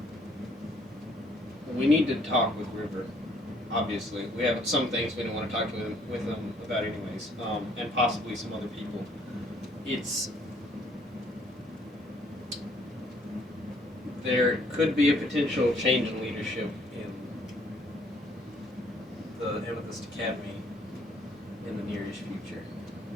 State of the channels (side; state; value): both; normal; correlation 0.64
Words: We need to talk with River. obviously. We have some things we don't want to talk to them with them about anyways, and possibly some other people. There could be a potential change in leadership in the Amethyst Academy in the nearest future.